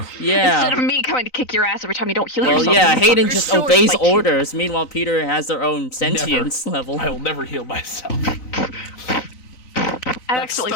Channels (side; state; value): right; late; 3.9 ms